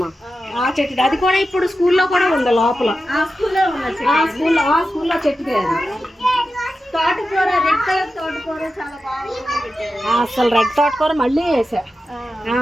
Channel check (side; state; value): both; normal; correlation 0.91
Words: ఆ చెట్టుది. అది కూడా ఇప్పుడు స్కూల్లో కూడా ఉంది లోపల. స్కూల్లో చెట్టుదే అది. తోటకూర, రెడ్ కలర్ తోటకూర చాలా బాగా. అసలు రెడ్ తోటకూర మళ్ళీ